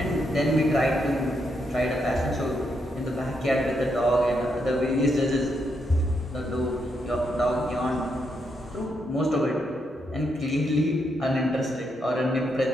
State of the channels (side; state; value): both; normal; correlation 0.79